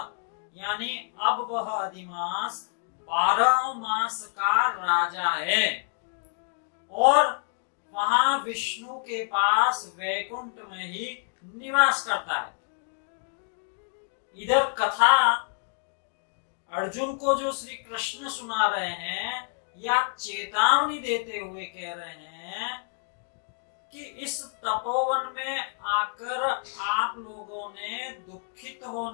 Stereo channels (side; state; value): right; silent; 59 dB below the other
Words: यानी अब वह अधिमास 12 मास का राजा है और वहां विष्णु के पास वैकुंठ में ही निवास करता है। इधर कथा अर्जुन को जो श्री कृष्ण सुना रहे हैं या चेतावनी देते हुए कह रहे हैं कि इस तपोवन में आकर आप लोगों ने दुखित